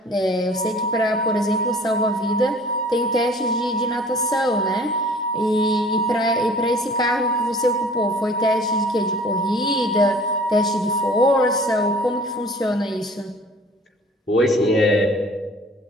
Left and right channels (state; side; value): normal; both; correlation 0.49